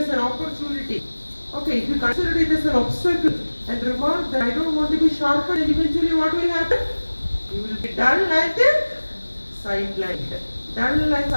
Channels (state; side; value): inverted; both; correlation -1.00